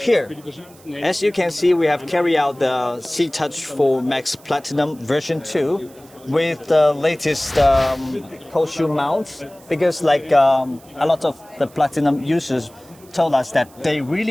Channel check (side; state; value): right; noise; hiss, 26 dB below the sound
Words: as you can see, we have carried out the C-Touch 4 Max Platinum version 2 with the latest cold shoe mounts, because like a lot of the Platinum users told us that they